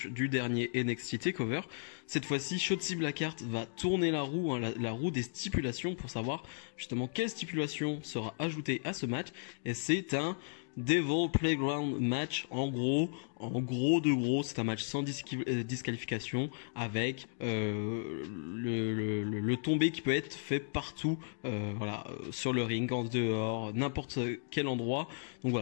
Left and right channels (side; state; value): right; silent; digital silence